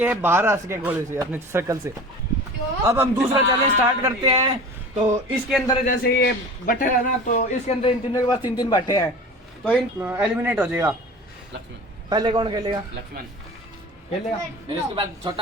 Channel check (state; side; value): normal; both; correlation 0.37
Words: बाहर आ सके गोले से, अपने सर्कल से। अब हम दूसरा चैलेंज स्टार्ट करते हैं। तो इसके अंदर जैसे ये बट्टे है ना, तो इसके अंदर इन तीनों के पास 3-3 बट्टे हैं। तो इन एलिमिनेट हो जाएगा। लक्ष्मण। पहले कौन खेलेगा? लक्ष्मण। खेलेगा फिर उसके बाद